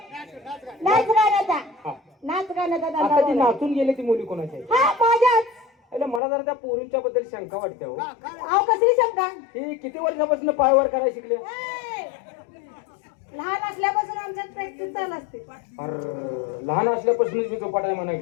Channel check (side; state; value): right; drops out; at 6.2 s